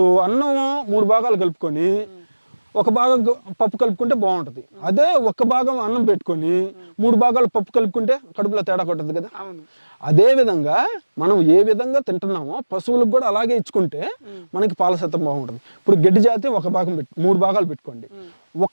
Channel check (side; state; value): both; inverted; correlation -1.00